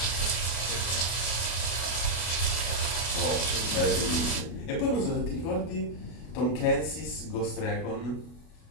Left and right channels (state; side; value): late; right; 33 ms